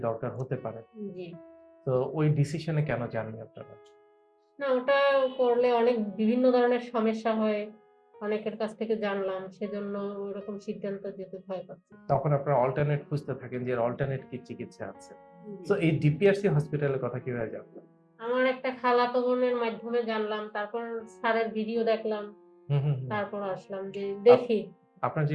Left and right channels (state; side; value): identical; both; correlation 1.00